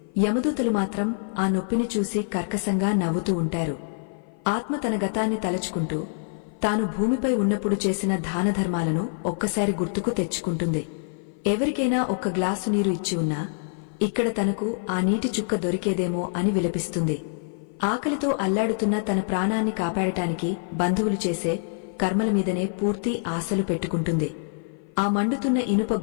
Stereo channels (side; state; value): right; silent; 55 dB below the other